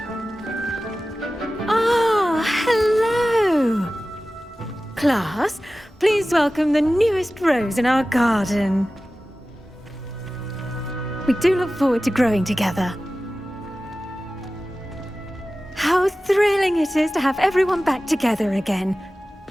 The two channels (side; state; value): both; normal; correlation 0.96